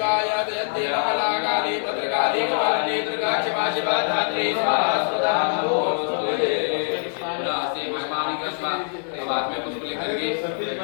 जयति महाकाली भद्रकाली कपालिनी दुर्गा क्षमा शिवा धात्री स्वाहा स्वधा नमोस्तुते नास्ति महिमानि कृष्णा। अब हाथ में पुष्प लेकर के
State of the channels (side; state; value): right; silent; 63 dB below the other